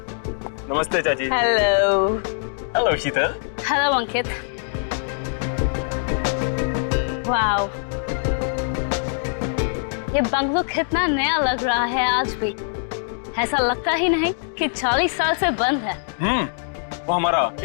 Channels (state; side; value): silent; right; digital silence